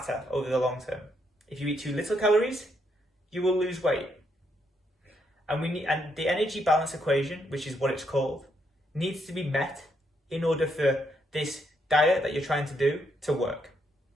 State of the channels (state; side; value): normal; both; correlation 0.76